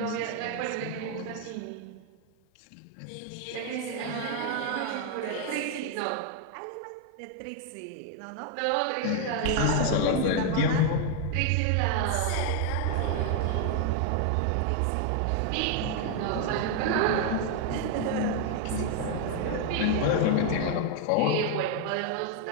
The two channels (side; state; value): both; different; correlation 0.00